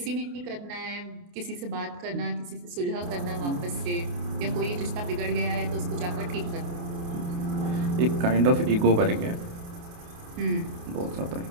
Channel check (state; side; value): late; left; 28 ms